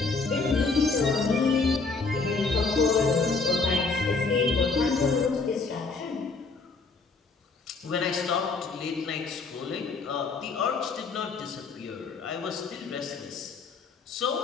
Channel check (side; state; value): right; quieter; 4.2 dB